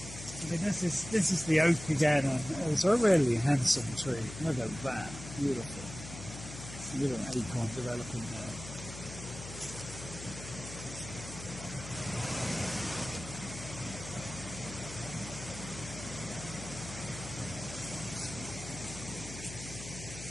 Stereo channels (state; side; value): noise; left; hum, 11 dB below the sound